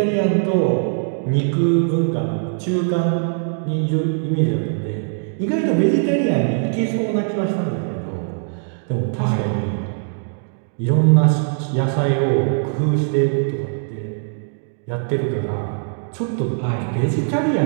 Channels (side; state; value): left; silent; digital silence